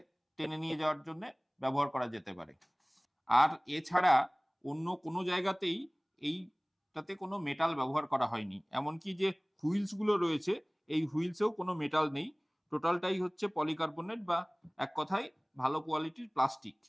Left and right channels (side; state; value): both; identical; correlation 1.00